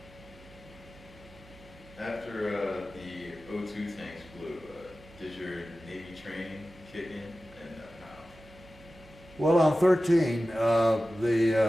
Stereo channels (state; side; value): noise; right; hum, 23 dB below the sound